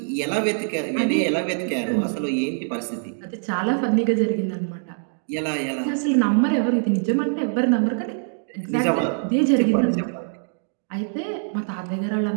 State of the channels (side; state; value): left; silent; digital silence